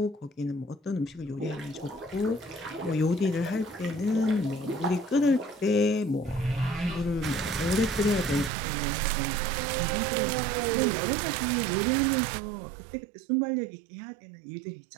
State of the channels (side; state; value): left; drops out; at 8.5 s